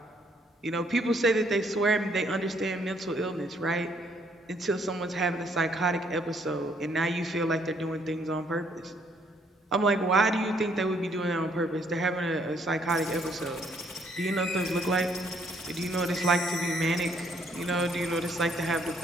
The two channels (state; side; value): normal; both; correlation 0.67